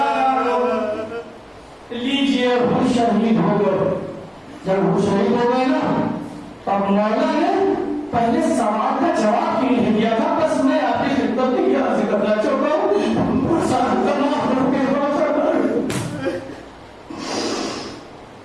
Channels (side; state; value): both; identical; correlation 1.00